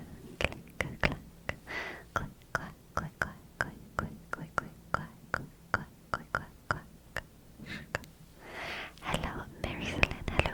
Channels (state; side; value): identical; both; correlation 1.00